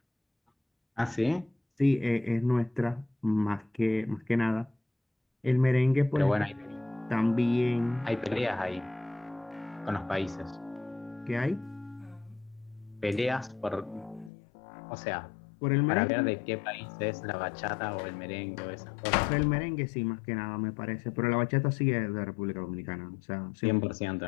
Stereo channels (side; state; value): right; drops out; at 14.3 s